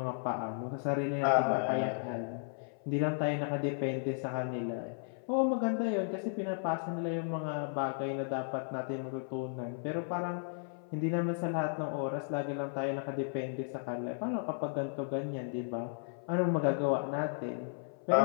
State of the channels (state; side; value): silent; right; 55 dB below the other